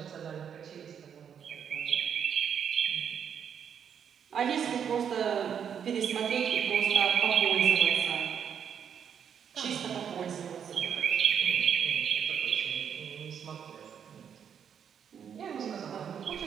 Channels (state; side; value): quieter; left; 8.0 dB